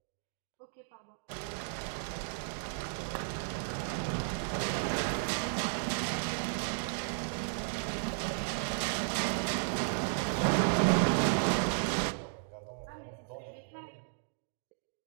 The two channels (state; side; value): silent; left; digital silence